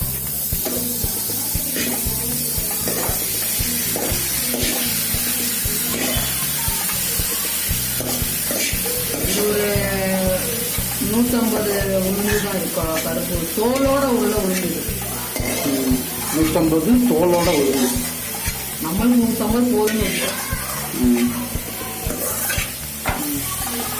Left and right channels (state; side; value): identical; both; correlation 1.00